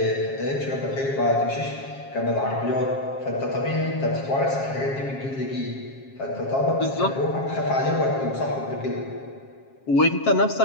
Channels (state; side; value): late; right; 7.4 ms